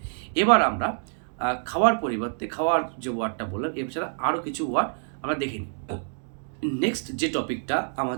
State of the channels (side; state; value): left; silent; digital silence